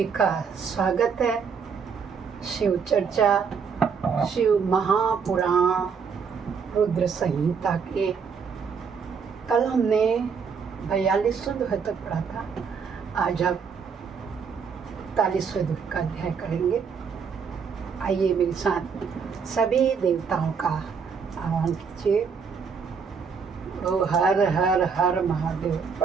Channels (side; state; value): left; quieter; 6.0 dB